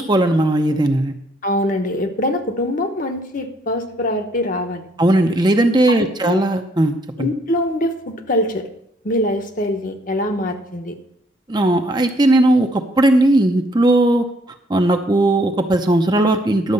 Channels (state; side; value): normal; both; correlation 0.67